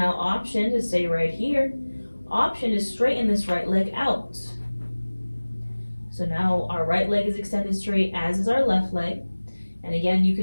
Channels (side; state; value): both; inverted; correlation -1.00